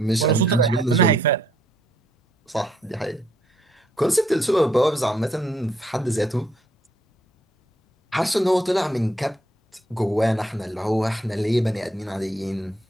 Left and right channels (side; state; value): both; normal; correlation 0.71